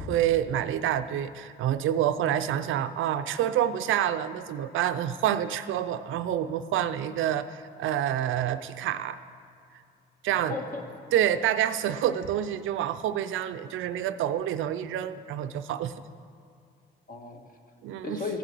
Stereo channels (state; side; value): quieter; left; 9.8 dB